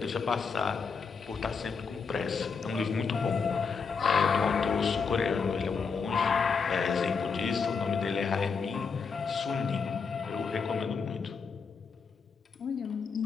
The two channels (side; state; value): right; quieter; 5.4 dB